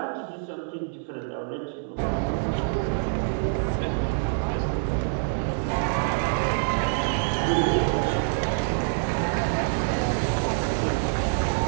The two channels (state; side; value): silent; left; digital silence